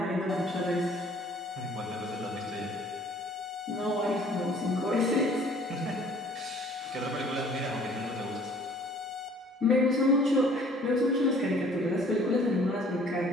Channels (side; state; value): both; normal; correlation 0.54